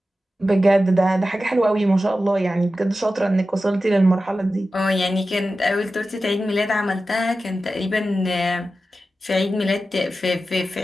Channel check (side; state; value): both; normal; correlation 0.93